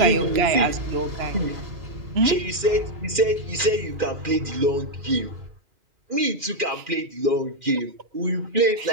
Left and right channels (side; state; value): left; late; 2.4 ms